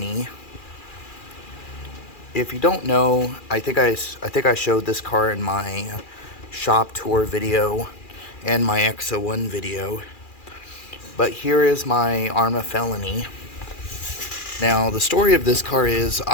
If you don't know, I think I showed this car in my shop tour video and my XO1 video. But here is my Arrma Felony. Now the story of this car is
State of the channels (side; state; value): right; late; 2.4 ms